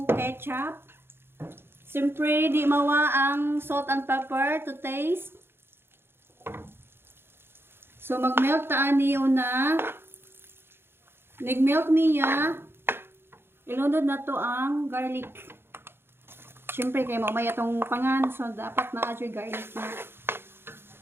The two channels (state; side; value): late; left; 0.11 ms